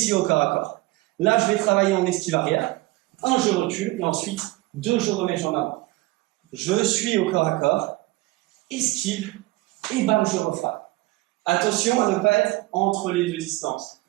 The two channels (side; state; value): left; quieter; 20.2 dB